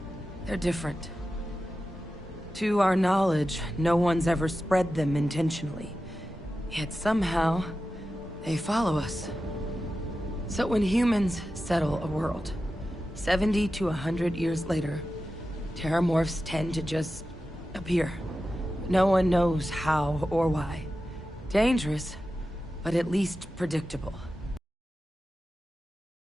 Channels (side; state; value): both; normal; correlation 0.92